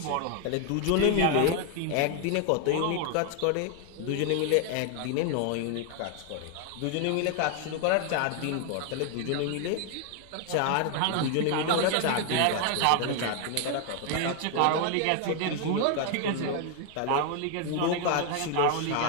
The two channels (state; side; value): different; both; correlation 0.00